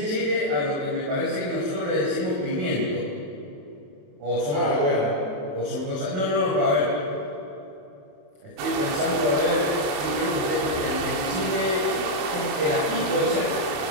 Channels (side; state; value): left; late; 28 ms